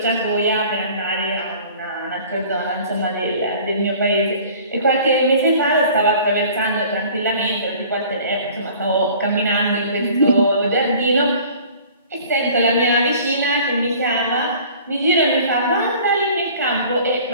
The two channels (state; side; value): inverted; both; correlation -0.48